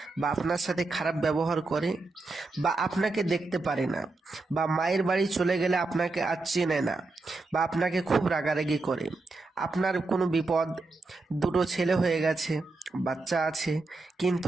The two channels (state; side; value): quieter; left; 3.4 dB